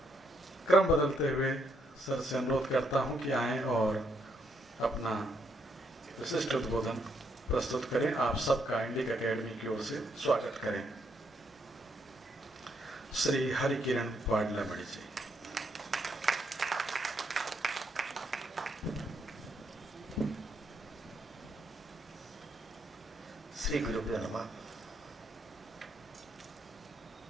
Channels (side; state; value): both; normal; correlation 0.75